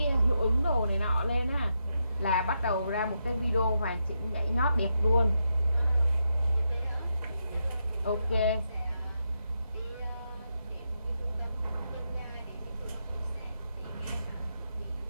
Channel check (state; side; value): inverted; both; correlation -0.83